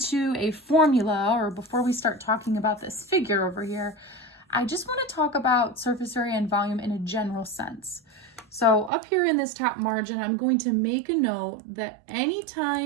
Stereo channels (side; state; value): left; drops out; at 8.9 s